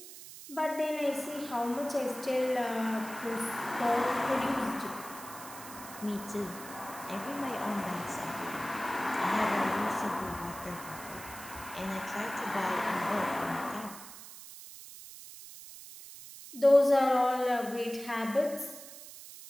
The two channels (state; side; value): noise; right; hiss, 14 dB below the sound